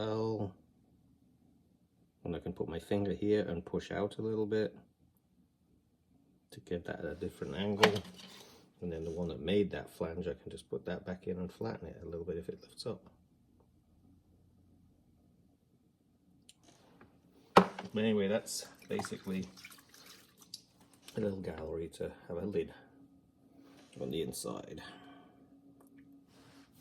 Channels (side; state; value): both; identical; correlation 1.00